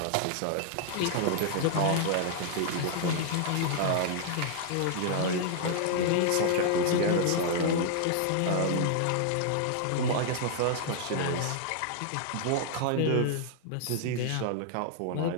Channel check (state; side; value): different; both; correlation -0.01